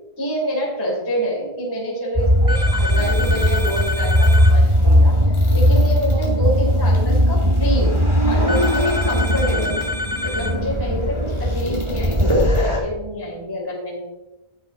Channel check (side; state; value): left; late; 1.4 ms